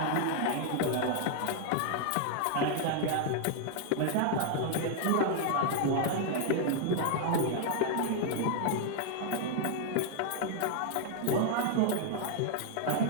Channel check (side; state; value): both; different; correlation 0.00